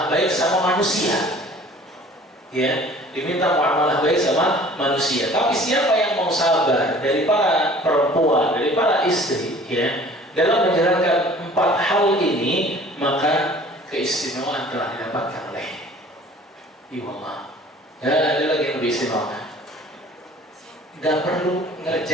baik sama manusia ya, diminta muamalah baik sama manusia. Tapi siapa yang mau sabar dari para perempuan, dari para istri ya, dalam menjalankan empat hal ini, maka keistimewaan telah didapatkan oleh Allah. Ya, ada lagi yang lebih istimewa. Gak perlu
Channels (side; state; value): both; normal; correlation 0.49